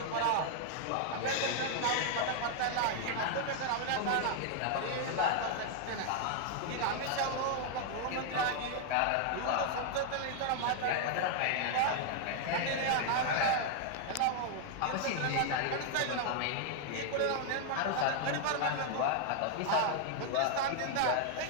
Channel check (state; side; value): different; both; correlation 0.00